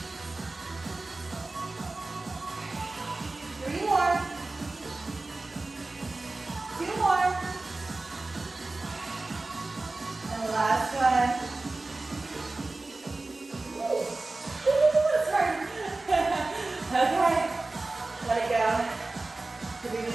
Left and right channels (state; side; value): quieter; left; 3.2 dB